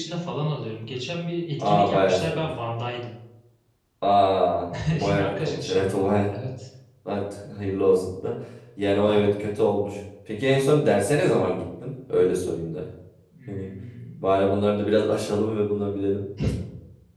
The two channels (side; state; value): both; identical; correlation 1.00